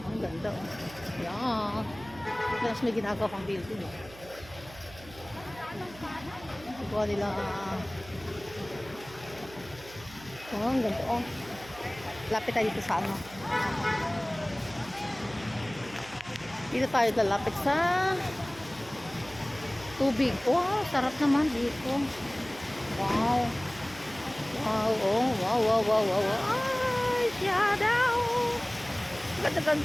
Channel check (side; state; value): right; noise; hum, 19 dB below the sound